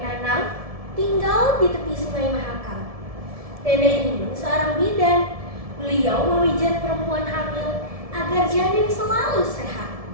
Nanang tinggal di tepi Sungai Mahakam. Nenek Inun seorang bidan. Beliau memijat perempuan hamil agar janin selalu sehat.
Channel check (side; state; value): left; late; 1.7 ms